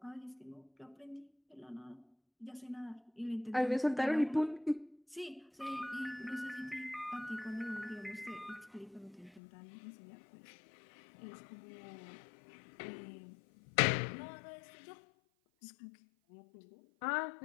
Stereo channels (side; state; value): right; drops out; at 9.4 s